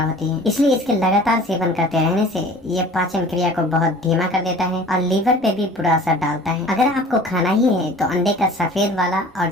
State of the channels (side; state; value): both; normal; correlation 0.45